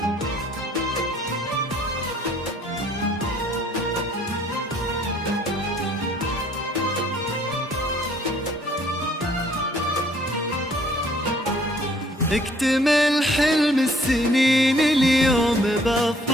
اكتمل حلم السنين اليوم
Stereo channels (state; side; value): normal; both; correlation 0.60